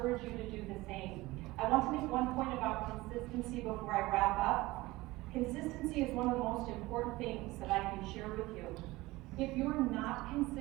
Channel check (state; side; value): quieter; left; 19.9 dB